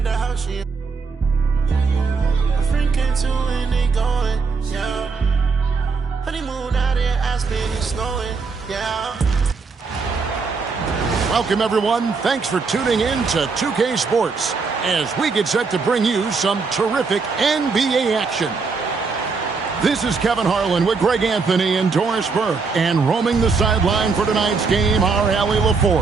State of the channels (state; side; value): quieter; left; 4.7 dB